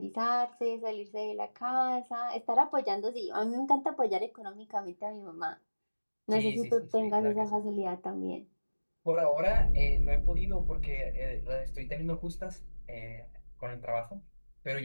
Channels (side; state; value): both; inverted; correlation -1.00